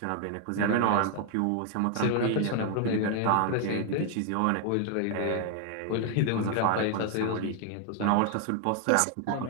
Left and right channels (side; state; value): both; different; correlation 0.00